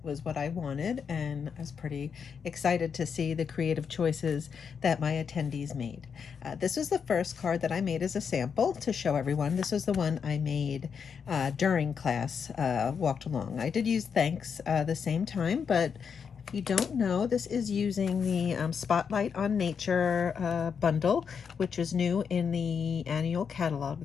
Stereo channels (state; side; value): quieter; right; 6.6 dB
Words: was what I wanted. And I was pretty excited to see the creative choices that my attendees made. This was the first card that I made as a sample to show everyone. This was the one I made during class, walked along. I did use thanks the same time, but if you don't know, this is using the Spotlight on Nature bundle, which is new in the annual